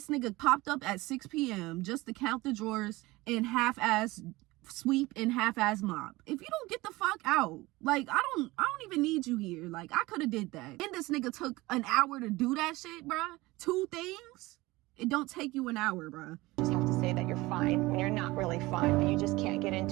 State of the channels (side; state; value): left; quieter; 20.5 dB